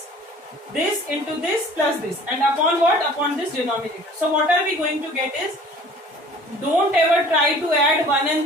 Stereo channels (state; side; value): normal; both; correlation 0.49